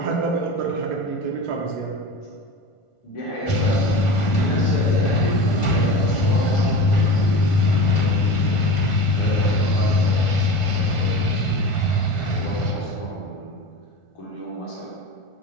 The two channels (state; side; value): late; right; 1.4 ms